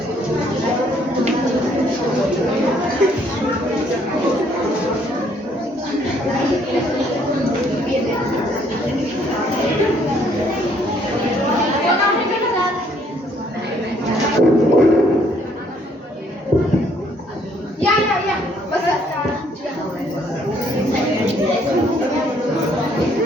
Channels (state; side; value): normal; both; correlation 0.66